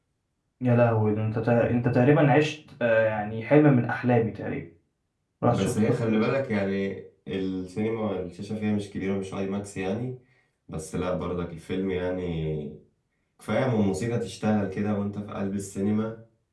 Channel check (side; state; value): both; identical; correlation 1.00